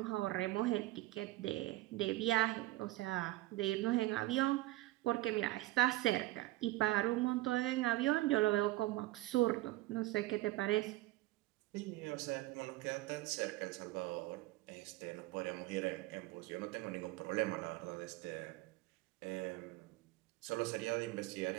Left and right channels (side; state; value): left; quieter; 17.9 dB